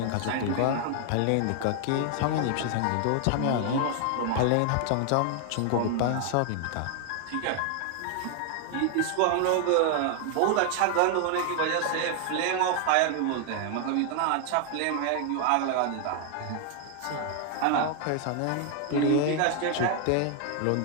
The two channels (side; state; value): both; different; correlation 0.00